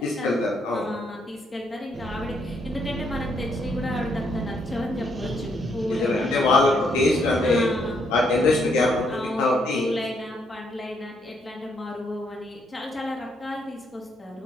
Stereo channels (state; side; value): normal; both; correlation 0.73